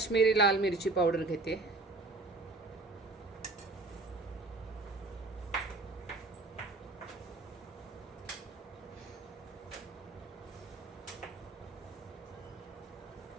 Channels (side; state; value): left; quieter; 3.3 dB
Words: लाल मिरची पावडर घेते,